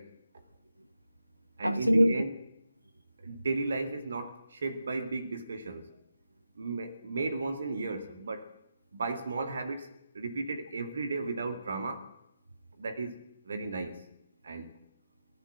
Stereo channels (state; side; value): inverted; both; correlation -0.89